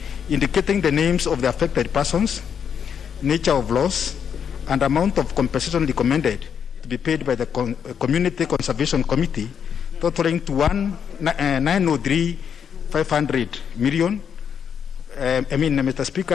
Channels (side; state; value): right; quieter; 7.7 dB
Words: indicating the names of the affected persons, nature of loss, and amount of compensation recommended to be paid by the Community Conservation Committee, totaling to 903,500 million. Mr.